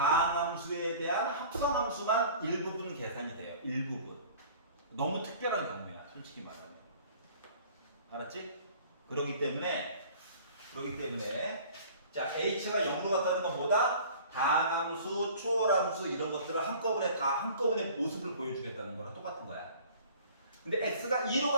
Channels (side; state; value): both; inverted; correlation -0.47